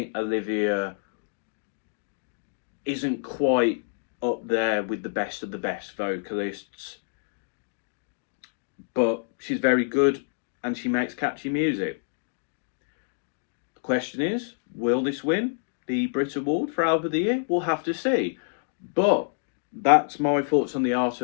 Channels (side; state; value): right; silent; digital silence